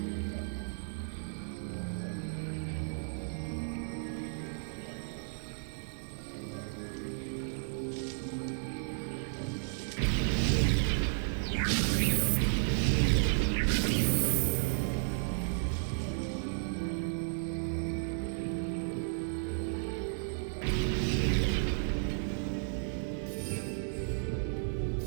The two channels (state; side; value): silent; left; digital silence